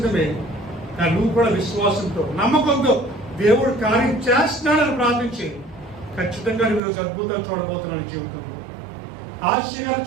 కానీ నువ్వు కూడా విశ్వాసంతో నమ్మకంతో దేవుడు కార్యం చేస్తున్నాడని ప్రార్థించి ఖచ్చితంగా నువ్వు ఈరోజు అద్భుతాలు చూడబోతున్నావు. జీవితంలో ఆశ్చర్యాలు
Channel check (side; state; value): left; drops out; at 6.8 s